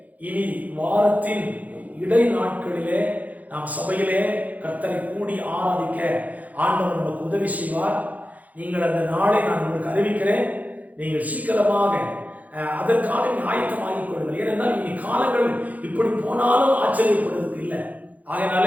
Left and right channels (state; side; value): late; left; 0.077 ms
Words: இனி வாரத்தின் இடை நாட்களிலே நாம் சபையிலே கர்த்தரை கூடி ஆராதிக்க ஆண்டவர் நமக்கு உதவி செய்வார். நீங்கள் அந்த நாளை நான் உங்களுக்கு அறிவிக்கிறேன். நீங்கள் சீக்கிரமாக அதற்காக ஆயத்தமாகிக் கொள்ளுங்கள். ஏனென்றால் இனி காலங்கள் இப்படி போனாலும் ஆச்சரியப்படுவதற்கு இல்லை.